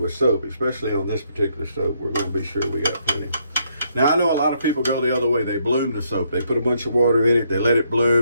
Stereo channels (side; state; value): both; inverted; correlation -0.73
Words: soap, especially on this particular soap. We're going to be sure we got plenty. Now, I know a lot of people go the other way. They bloom the soap. They put a bunch of water in it, they let it